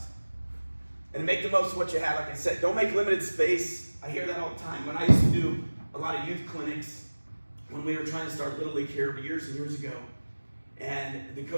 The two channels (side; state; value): both; inverted; correlation -1.00